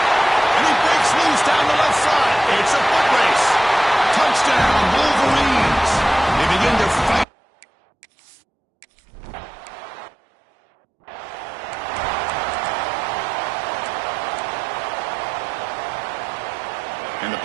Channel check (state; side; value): drops out; left; at 7.2 s